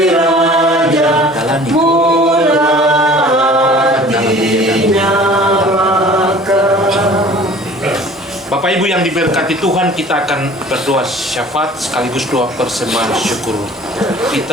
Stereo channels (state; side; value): normal; both; correlation 0.47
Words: Raja, murah dinyalakan. Bapak Ibu yang diberkati Tuhan, kita akan berdoa syafaat sekaligus doa persembahan syukur.